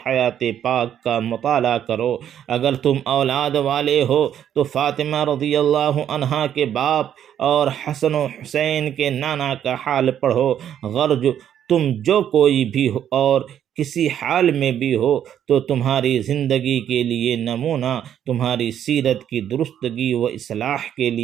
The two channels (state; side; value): quieter; left; 9.9 dB